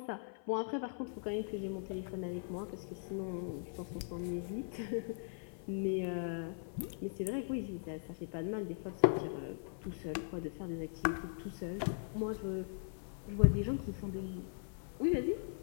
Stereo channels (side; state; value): right; silent; 51 dB below the other